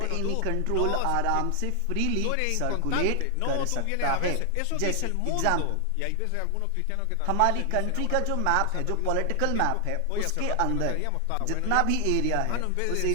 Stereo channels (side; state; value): both; different; correlation 0.00